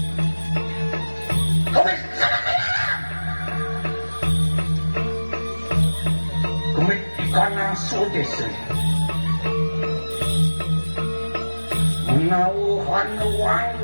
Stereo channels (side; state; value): both; inverted; correlation -1.00